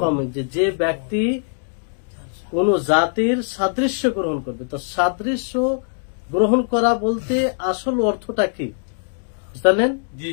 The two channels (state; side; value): silent; right; digital silence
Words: যে ব্যক্তি কোন জাতির সাদৃশ্য গ্রহণ করবে। তো সাদৃশ্য গ্রহণ করা বলতে আসল অর্থটা কি বুঝলেন?